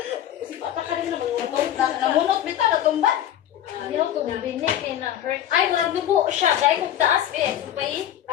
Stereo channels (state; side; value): quieter; right; 11.3 dB